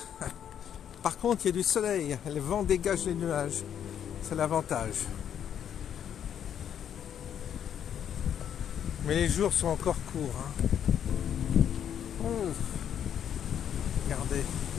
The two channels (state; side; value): quieter; right; 9.2 dB